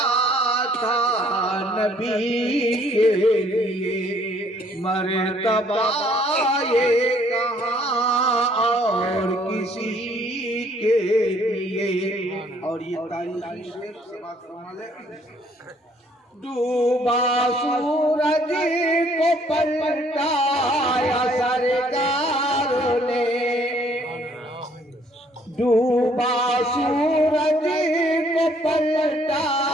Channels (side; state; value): both; normal; correlation 0.63